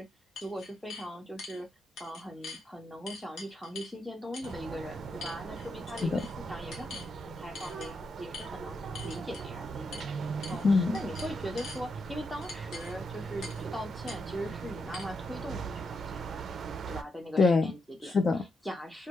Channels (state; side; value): normal; both; correlation 0.82